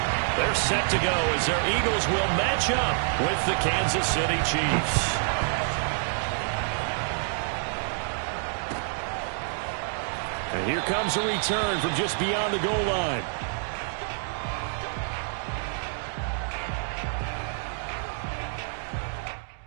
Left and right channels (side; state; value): left; silent; digital silence